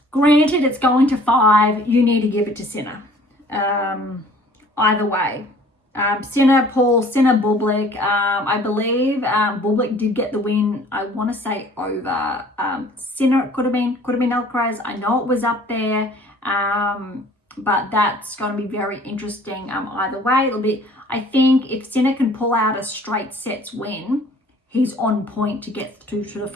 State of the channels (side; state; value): both; normal; correlation 0.52